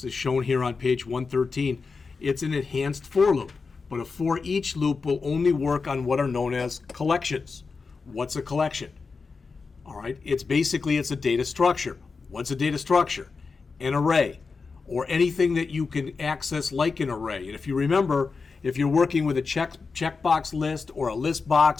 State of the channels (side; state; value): right; quieter; 4.7 dB